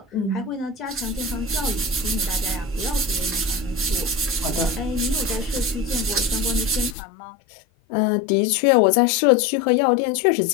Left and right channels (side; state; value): right; drops out; at 7.0 s